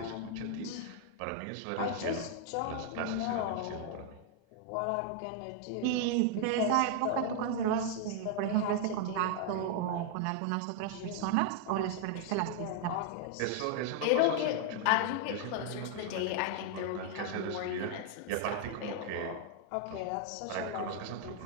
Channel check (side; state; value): both; different; correlation 0.00